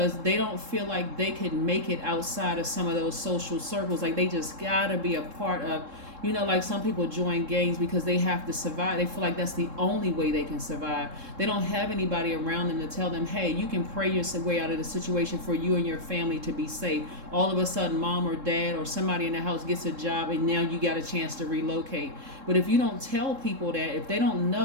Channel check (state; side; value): late; left; 3.7 ms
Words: they don't feel like they can make it outside of some of those social circles. Like, they just gotta be a part of, like some people join gangs because they have to survive. They feel like that's the only way they can survive. They don't have anybody around them to tell them, hey, you can pray your way out of the situation for you and your family to be safe. All of a sudden, mom or dad or somebody in the house gets a job and now you got a chance to relocate. But if you don't tell people that, if they don't